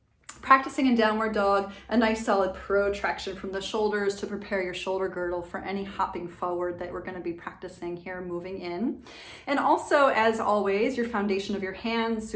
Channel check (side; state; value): both; identical; correlation 1.00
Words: Practicing in downward dog, a nice solid protraction from the shoulders to prepare your shoulder girdle for any hopping forward that we're going to be practicing here, moving in. And also, as always, your foundation of your hands,